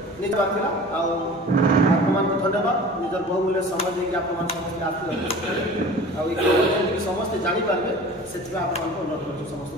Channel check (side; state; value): right; noise; hum, 25 dB below the sound